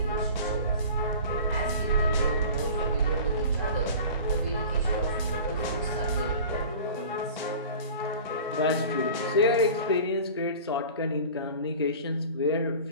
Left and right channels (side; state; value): both; inverted; correlation -0.39